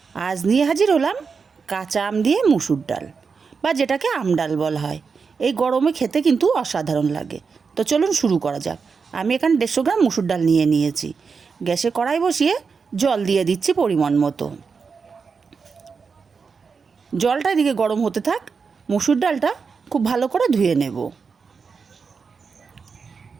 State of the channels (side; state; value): left; quieter; 5.3 dB